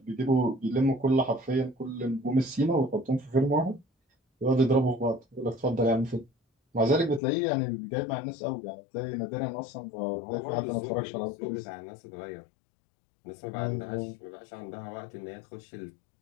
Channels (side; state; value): right; drops out; at 7.2 s